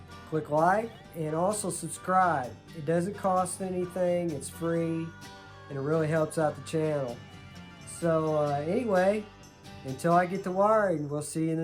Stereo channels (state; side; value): identical; both; correlation 1.00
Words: click like and also subscribe. It doesn't cost anything, it's free, and it really helps out the channel. So anyway, until I get the wiring, we'll see you in